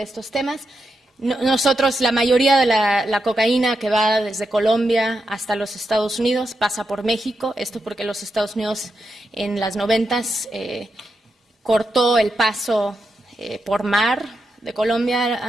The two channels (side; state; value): both; normal; correlation 0.86